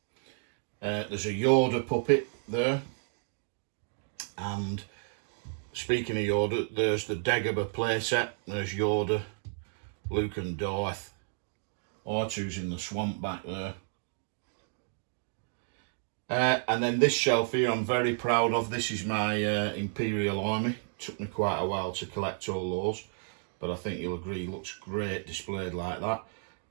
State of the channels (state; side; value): silent; left; 57 dB below the other